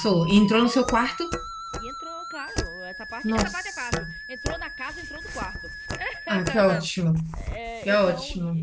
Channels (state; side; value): identical; both; correlation 1.00